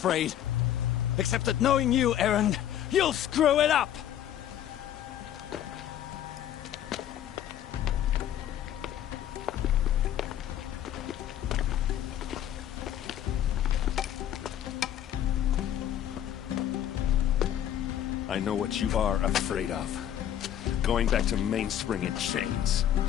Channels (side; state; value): right; quieter; 10.9 dB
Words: Except that knowing you, Erend, you'll screw it up! I know what you are afraid of. Going back to Mainspring in chains.